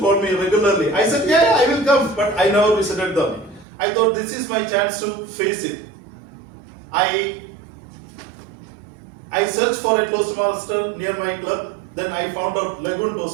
me regularly. I said, yeah, I will come, but I never visited them. I thought this is my chance to face it. I searched for a Toastmaster near my club. Then I found out Lagoon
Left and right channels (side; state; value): left; drops out; at 3.7 s